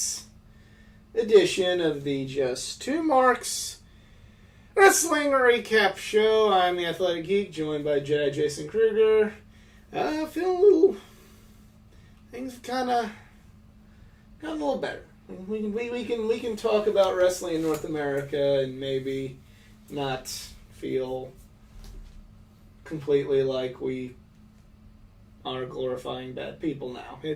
edition of the Just Two Marks Wrestling Recap Show. I'm the Athletic Geek, joined by Jedi Jason Kruger. Feeling a little... Things have kind of got a little better. We can talk about wrestling in North America and maybe not feel completely like we are glorifying bad people now.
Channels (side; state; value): both; identical; correlation 1.00